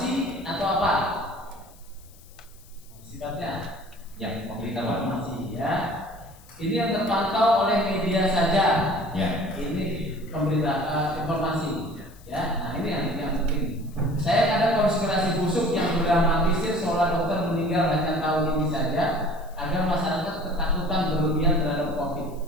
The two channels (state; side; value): noise; left; hiss, 26 dB below the sound